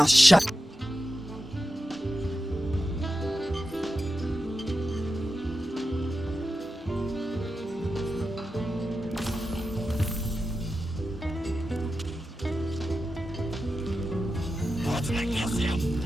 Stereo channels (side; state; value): both; normal; correlation 0.91